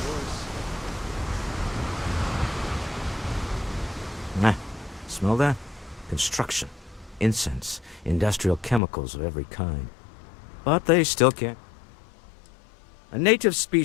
Yours. Nah, smell that? Construction, incense, industrial chemicals of every kind. But they still can't. A native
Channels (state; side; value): drops out; right; at 8.8 s